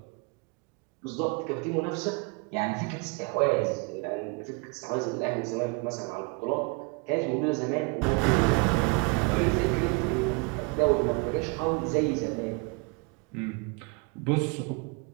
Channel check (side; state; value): left; quieter; 30.2 dB